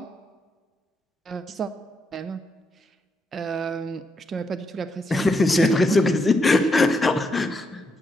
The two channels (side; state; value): both; normal; correlation 0.80